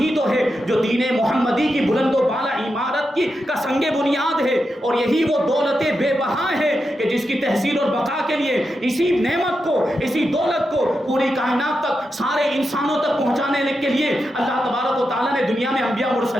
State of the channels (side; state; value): both; normal; correlation 0.87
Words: ہی تو ہے جو دین محمدی کی بلند و بالا عمارت کی کا سنگ بنیاد ہے. اور یہی وہ دولت بے بہا ہے کہ جس کی تحصیل اور بقا کے لیے اسی نعمت کو، اسی دولت کو پوری کائنات تک، سارے انسانوں تک پہنچانے کے لیے اللہ تبارک و تعالیٰ نے دنیا میں انبیاء